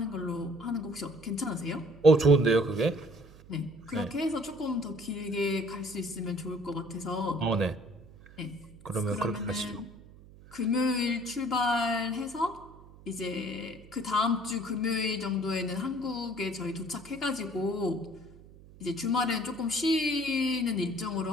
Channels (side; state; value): right; noise; hum, 21 dB below the sound